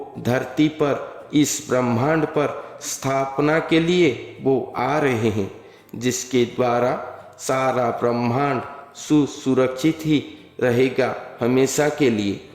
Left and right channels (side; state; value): both; identical; correlation 1.00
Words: धरती पर, इस ब्रह्मांड पर स्थापना के लिए वो आ रहे हैं, जिसके द्वारा सारा ब्रह्मांड सुरक्षित ही रहेगा हमेशा के लिए।